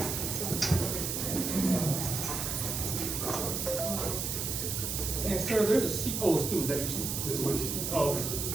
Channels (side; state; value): right; noise; hiss, 2 dB below the sound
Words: And sir, there's a seat. Oh, it's two. Is that your seat? This way. Oh,